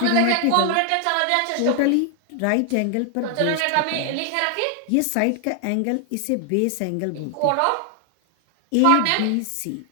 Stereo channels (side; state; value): both; different; correlation 0.00